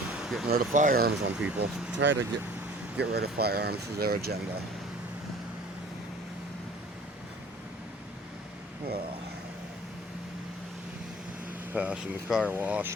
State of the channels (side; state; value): both; normal; correlation 0.48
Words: getting rid of firearms on people. Try to get rid of firearms is their agenda. Well, passing the car